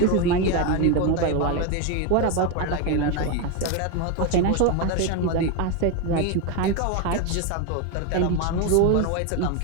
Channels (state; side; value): different; both; correlation 0.02